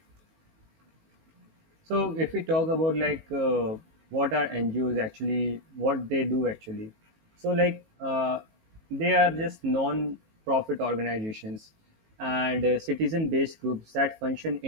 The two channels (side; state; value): left; late; 19 ms